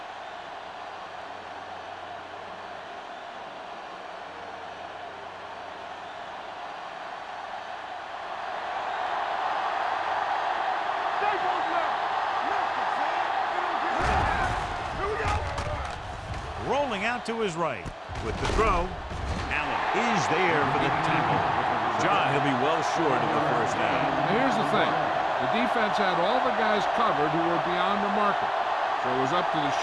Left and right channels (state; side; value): identical; both; correlation 1.00